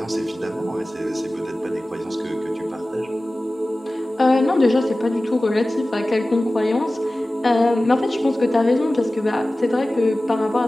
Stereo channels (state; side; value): normal; both; correlation 0.97